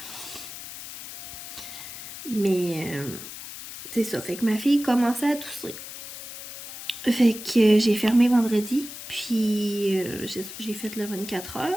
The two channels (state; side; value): noise; left; hiss, 11 dB below the sound